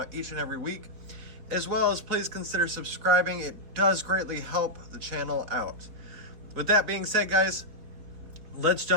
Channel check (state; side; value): late; left; 4.0 ms